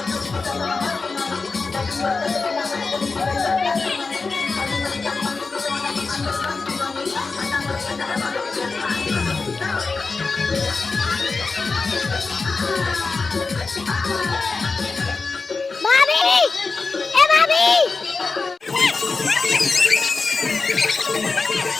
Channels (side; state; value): right; quieter; 4.2 dB